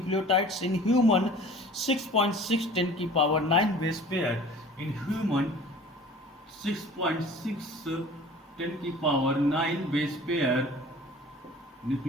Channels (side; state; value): both; normal; correlation 0.44